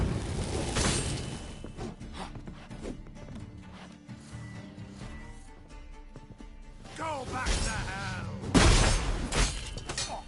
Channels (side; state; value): both; identical; correlation 1.00